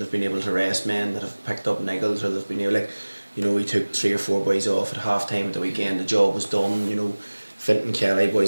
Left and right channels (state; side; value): inverted; both; correlation -1.00